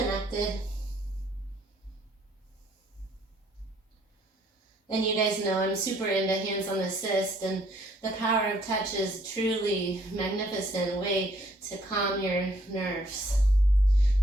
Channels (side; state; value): both; normal; correlation 0.64